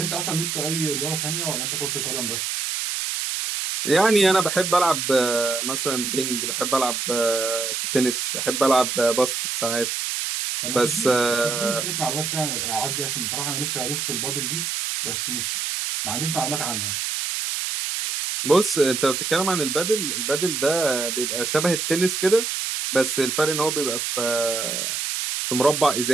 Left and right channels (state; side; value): noise; right; hiss, 2 dB below the sound